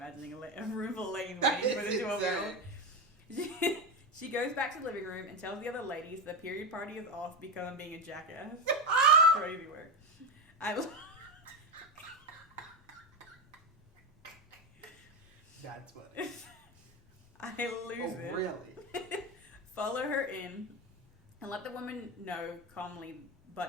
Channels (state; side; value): normal; both; correlation 0.14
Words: a room full of ladies waiting for the 12-year-old. She goes back to the living room and tells the other ladies the period party is off because I'm being a jackass. Crazy work. That's funny. I lose it. Oh, really? Follow her in and let the woman know calmly,